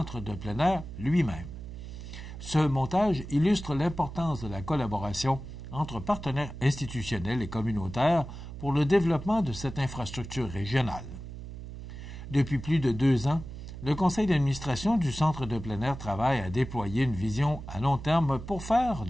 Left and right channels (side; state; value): right; noise; hum, 11 dB below the sound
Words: de plein air lui-même. Ce montage illustre l'importance de la collaboration entre partenaires institutionnels et communautaires pour le développement de cette infrastructure régionale. Depuis plus de 2 ans, le conseil d'administration du Centre de plein air travaille à déployer une vision à long terme pour faire